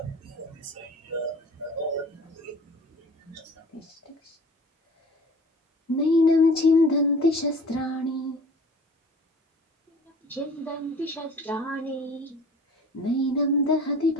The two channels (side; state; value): both; normal; correlation 0.45